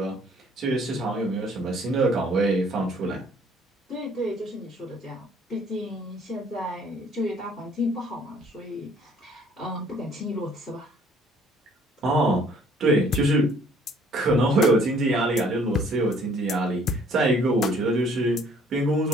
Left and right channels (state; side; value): normal; both; correlation 0.59